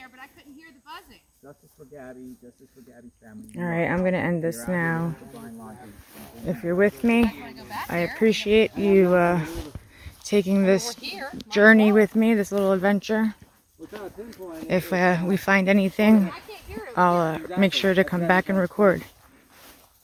but I couldn't hear the buzzing. Justice for Gabby. Justice for Gabby's family. All right, I'm going to end this now. Brian Laundrie. If you're with me, Want to go back I there? appreciate you taking this We're here. journey with me, this little adventure. We're trying to pinpoint it. If we find anything, I can't hear it. I'll make sure to come back and record.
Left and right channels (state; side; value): identical; both; correlation 1.00